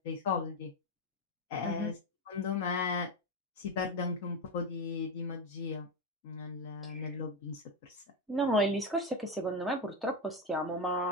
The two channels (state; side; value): normal; both; correlation 0.12